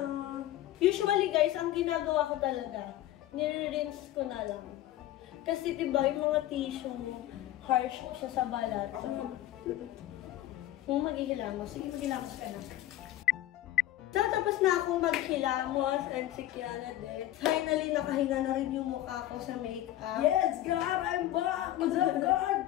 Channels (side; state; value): right; quieter; 13.9 dB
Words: Usually guys, ang ginagawa ko talaga, nire-rinse ko na lang. Kasi diba yung mga tissue, harsh siya sa balat. Kung maghihilamos, sige maghihilamos ka na. So, tapos na akong maghilamos and si Kiana din. Finally, nakahinga na rin yung mukha ko sa makeup. Yes, God! I'm back! What's up,